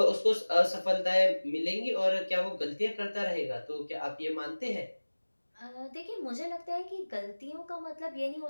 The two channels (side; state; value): both; inverted; correlation -1.00